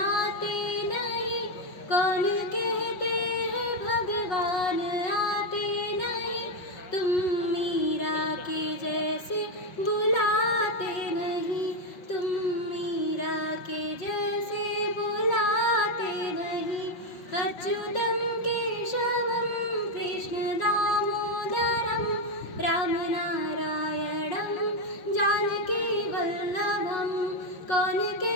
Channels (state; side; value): late; right; 5.5 ms